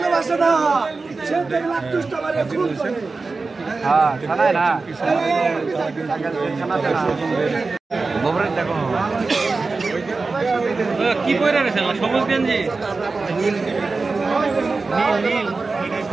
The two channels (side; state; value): left; quieter; 3.9 dB